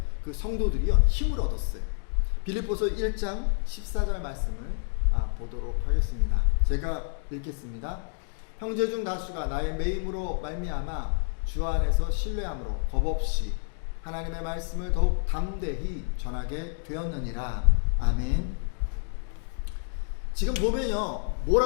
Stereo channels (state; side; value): silent; right; digital silence